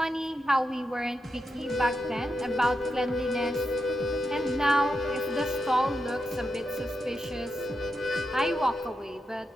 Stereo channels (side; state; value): both; normal; correlation 0.87